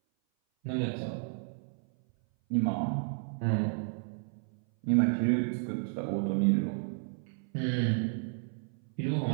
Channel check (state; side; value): silent; left; 56 dB below the other